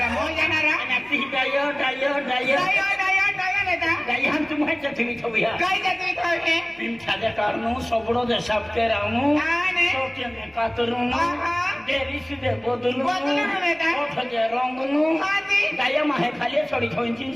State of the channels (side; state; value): right; noise; hum, 29 dB below the sound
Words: मोय जाणारा नक्की डायो डायो डायो डायो डायो डायो नेता डायो हम तुम्हें चथवी थविया काय जाते थावे पिंछादे कारनु सबड़ो दे सब के रानु आणि सोके में कातरुनु आहा देरिस दे बोदलु बोदलु बेटा ओठ जे रंगनु हाती डायो माहे खाली छोड़ी छोइन तीन